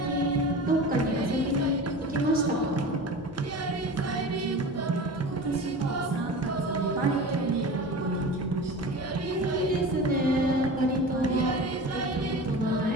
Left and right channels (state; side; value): normal; both; correlation 0.33